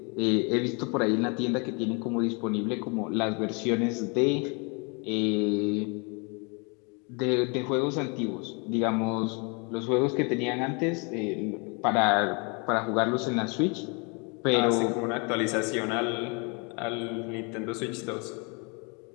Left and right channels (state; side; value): quieter; right; 32.7 dB